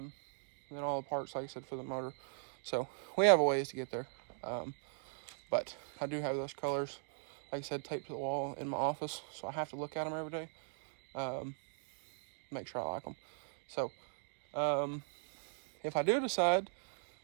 then all the parts, like I said, for the motor. So we have a ways to get there. But I do have those colors, like I said, taped to the wall in my office. So I have to look at them every day. Make sure I like them. So if I do decide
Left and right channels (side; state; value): left; silent; digital silence